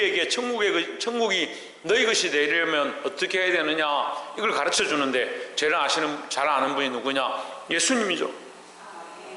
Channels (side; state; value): both; identical; correlation 1.00